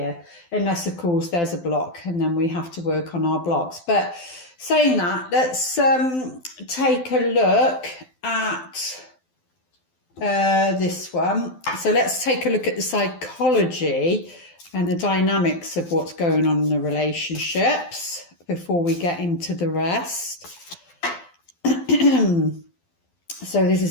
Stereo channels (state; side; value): late; right; 12 ms